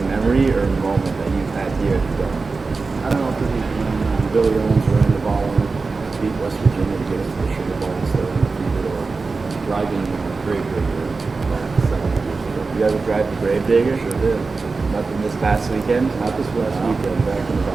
memory or moment that you've had here at the Dome? I don't know if this is when Billy Owens ran the ball and beat West Virginia to get us to the Sugar Bowl instead of undefeated, or driving Gravedigger about 7 years ago. You ever drive the Gravedigger? Sure did. Nothing this past weekend? Not this last weekend, back in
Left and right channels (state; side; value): quieter; left; 4.1 dB